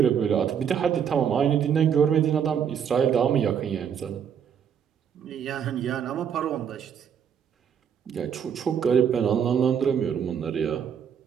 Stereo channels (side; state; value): left; quieter; 8.0 dB